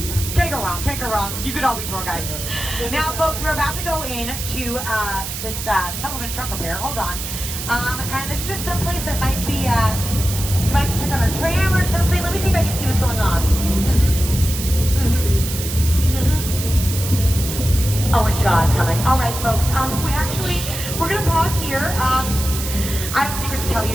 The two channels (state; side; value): noise; right; hiss, 6 dB below the sound